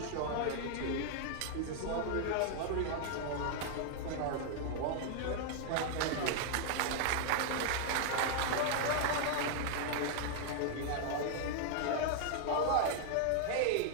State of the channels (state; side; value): different; both; correlation 0.00